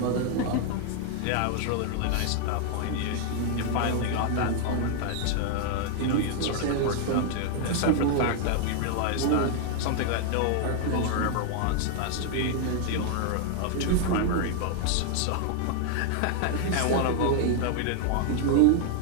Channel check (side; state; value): both; different; correlation 0.00